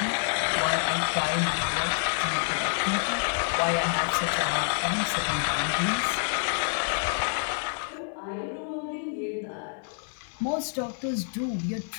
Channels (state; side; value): silent; right; 60 dB below the other